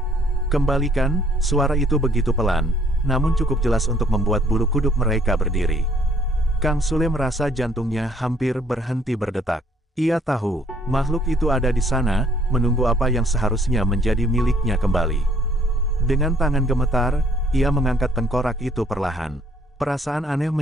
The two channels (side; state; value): both; normal; correlation 0.63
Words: Kembalikan, suara itu begitu pelan, namun cukup jelas untuk membuat bulu kuduk mereka berdiri. Kang Sule merasa jantungnya hampir berhenti berdetak. Ia tahu, makhluk itu ada di sana, menunggu apa yang seharusnya menjadi miliknya kembali. Dengan tangan gemetar, ia mengangkat tengkorak itu perlahan. Perasaan aneh